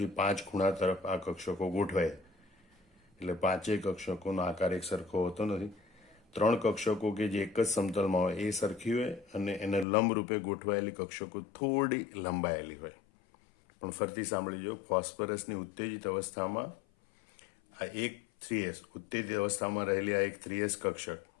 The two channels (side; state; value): right; drops out; at 9.9 s